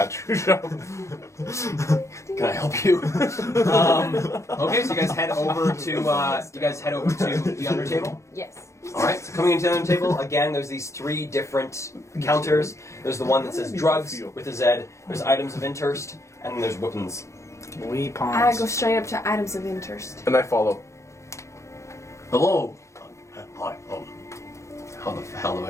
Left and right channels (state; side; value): late; right; 0.14 ms